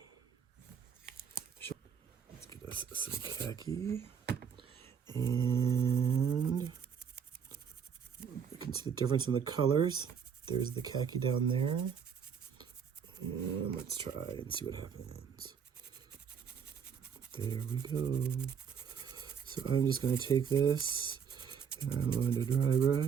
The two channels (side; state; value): left; quieter; 7.2 dB